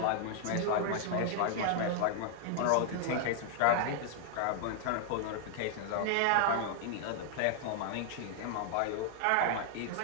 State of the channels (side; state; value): both; different; correlation -0.01